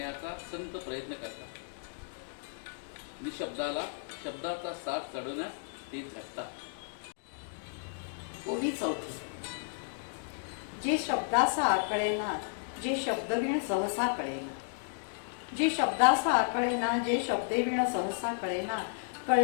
संत प्रयत्न करतात. निशब्दाला शब्दाचा साथ चढवण्यास ते झटतात. ओवी 4. जे शब्दासा आकळेना जे शब्दवीण सहसा कळेना. जे शब्दासा आकळेना जे शब्देवीण सहसा कळेना.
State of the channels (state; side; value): silent; right; digital silence